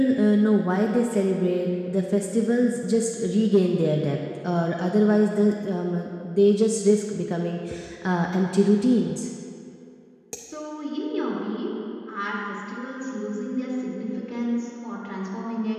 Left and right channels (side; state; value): both; identical; correlation 1.00